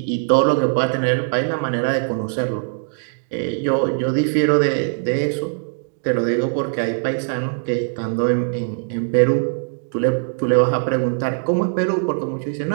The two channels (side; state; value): left; silent; digital silence